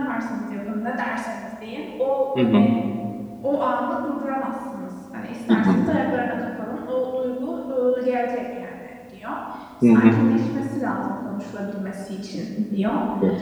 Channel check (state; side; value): identical; both; correlation 1.00